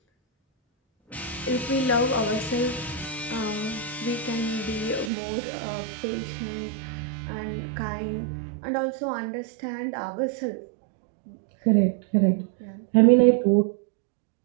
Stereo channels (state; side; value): drops out; left; at 5.1 s